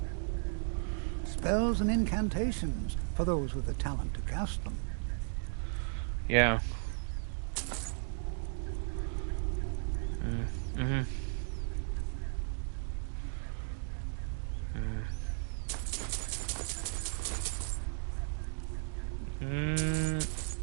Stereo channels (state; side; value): silent; left; digital silence